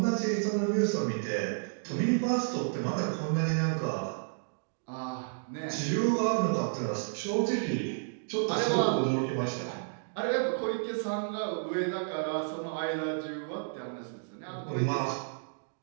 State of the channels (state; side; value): silent; left; digital silence